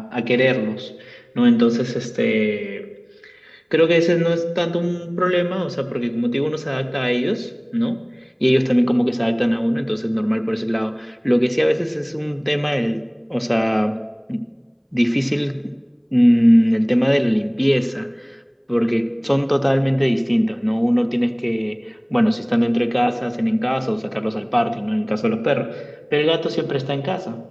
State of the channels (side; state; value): both; identical; correlation 1.00